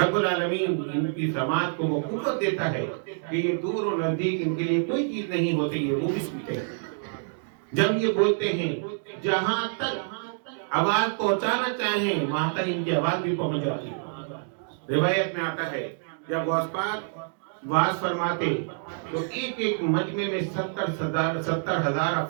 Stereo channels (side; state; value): left; silent; digital silence